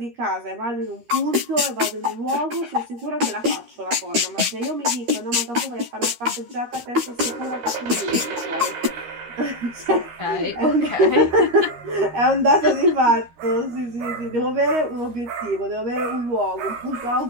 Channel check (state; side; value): late; left; 13 ms